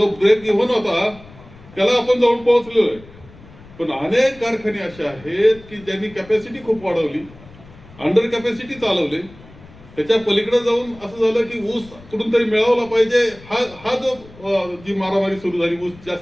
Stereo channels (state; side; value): noise; left; rumble, 22 dB below the sound